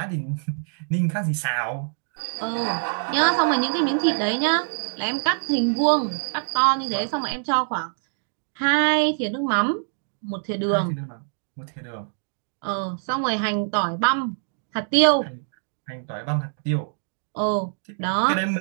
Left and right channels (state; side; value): silent; left; digital silence